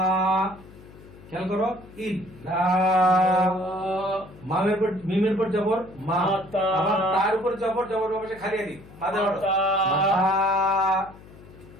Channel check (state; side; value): noise; left; hum, 20 dB below the sound